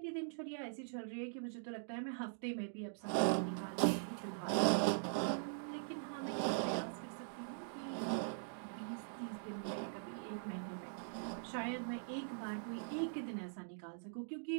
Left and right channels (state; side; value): silent; left; digital silence